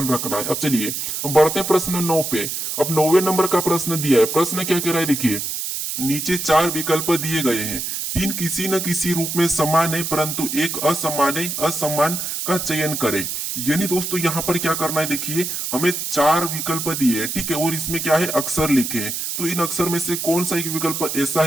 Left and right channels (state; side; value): noise; right; hiss, 3 dB below the sound